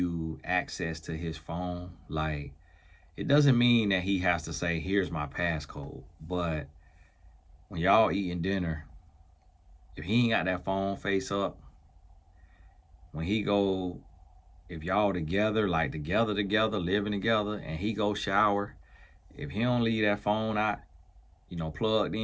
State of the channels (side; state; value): both; identical; correlation 1.00